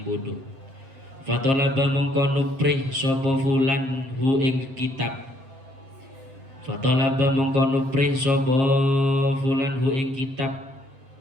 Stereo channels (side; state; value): left; late; 7.7 ms